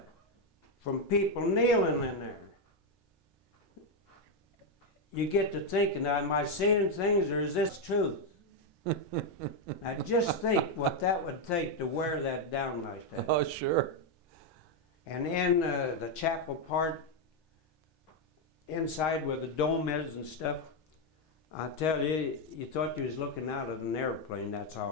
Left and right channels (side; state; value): both; normal; correlation 0.03